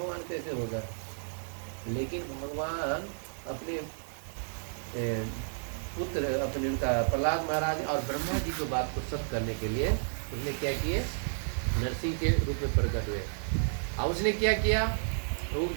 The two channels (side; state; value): left; silent; digital silence